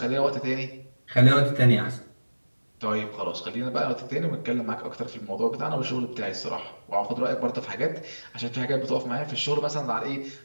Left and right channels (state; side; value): inverted; both; correlation -1.00